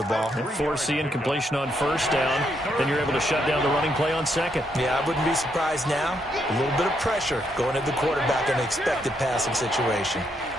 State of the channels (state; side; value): normal; both; correlation 0.77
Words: ball. Force the incompletion on first down. Then you're able to shut down the running play on second. Yeah, I wouldn't be surprised now. A little bit of pressure going at the quarterback in an expected passing situation.